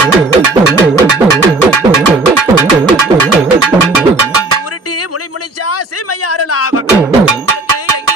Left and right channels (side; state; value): left; quieter; 3.1 dB